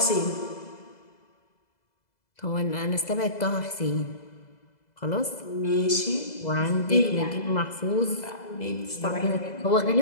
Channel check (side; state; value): right; late; 2.0 ms